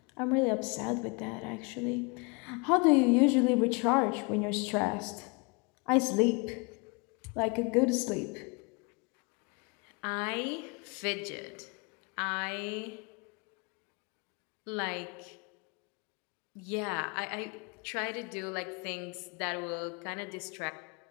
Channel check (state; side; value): quieter; right; 30.5 dB